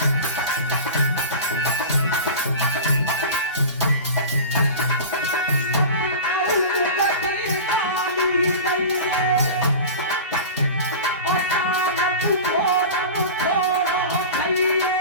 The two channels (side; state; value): both; inverted; correlation -0.31